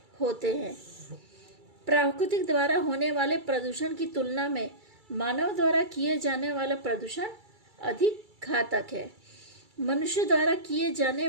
होते हैं। प्राकृतिक द्वारा होने वाले प्रदूषण की तुलना में मानव द्वारा किए जाने वाला प्रदूषण अधिक घातक है। मनुष्य द्वारा किए जाने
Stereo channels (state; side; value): late; left; 2.3 ms